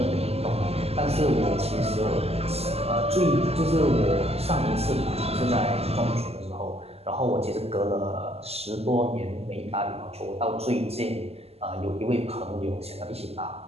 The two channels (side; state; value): left; late; 0.29 ms